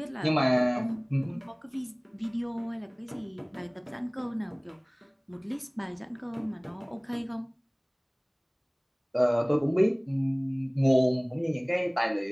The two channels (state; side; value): identical; both; correlation 1.00